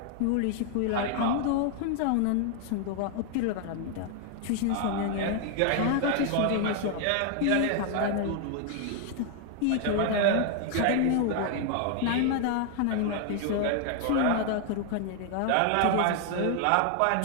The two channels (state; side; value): different; both; correlation 0.00